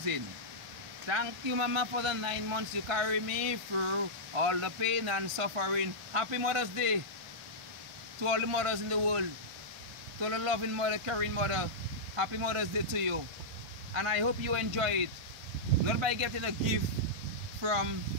Thank you, Mama, for the 9 months you carry me through all the pain and suffering. Happy Mother's Day to all the mothers in the world. To all the loving mother, caring mother. Happy Mother's Day to you. And I hope you enjoy it. Not by getting a gift from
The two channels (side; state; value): left; late; 1.5 ms